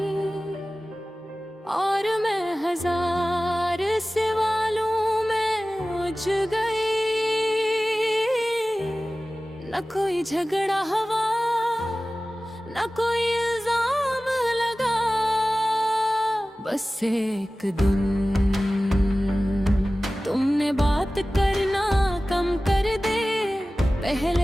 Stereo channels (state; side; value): normal; both; correlation 0.97